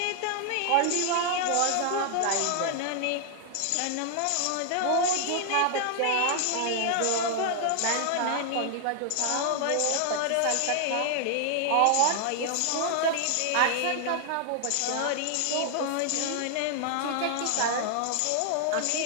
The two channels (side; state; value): both; different; correlation 0.00